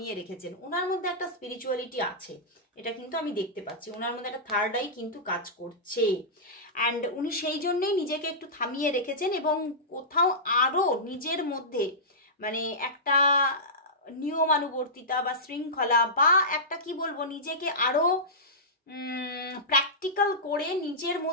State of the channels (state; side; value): normal; both; correlation -0.15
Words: রেখেছেন। ওনার মধ্যে একটা স্পিরিচুয়ালিটি আছে, এটা কিন্তু আমি দেখতে পাচ্ছি, ওনার মধ্যে একটা থার্ড আই কিন্তু কাজ করছে, অ্যান্ড উনি সেই জন্যেই নিজেকে একটু থামিয়ে রেখেছেন, এবং কোথাও আরও নিজের মধ্যে মানে একটা নিয়মানুবর্তিতা বা শৃঙ্খলা, বা একটা কি বলবো, নিজেকে আরও প্র্যাকটিক্যাল করে নিজের